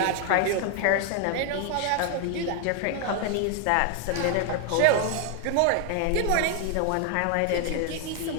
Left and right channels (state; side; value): different; both; correlation 0.00